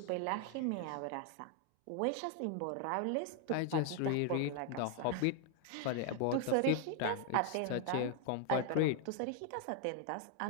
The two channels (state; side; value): different; both; correlation 0.00